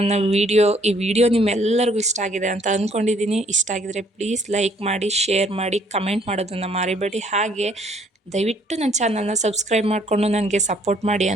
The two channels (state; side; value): normal; both; correlation 0.63